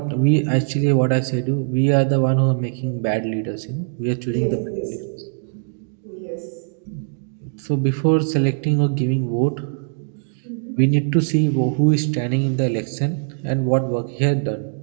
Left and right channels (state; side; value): silent; left; digital silence